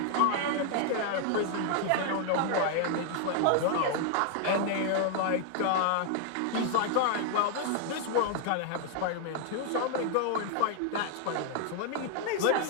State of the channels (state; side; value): different; both; correlation 0.00